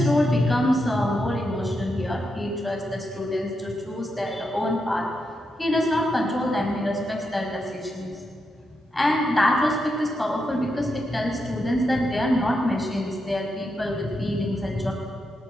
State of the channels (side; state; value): both; normal; correlation 0.84